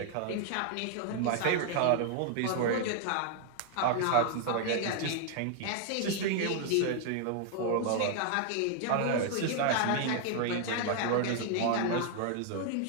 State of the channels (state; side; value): different; both; correlation 0.00